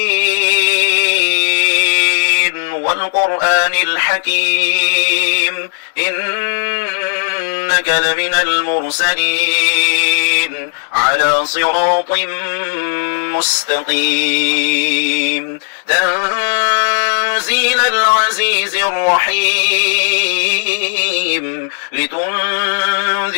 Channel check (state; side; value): silent; right; digital silence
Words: والقرآن الحكيم إنك لمن المرسلين على صراط مستقيم تنزيل العزيز الرحيم